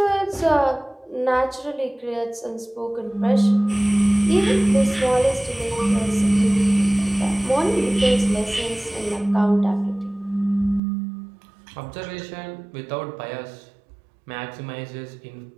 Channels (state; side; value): drops out; left; at 10.8 s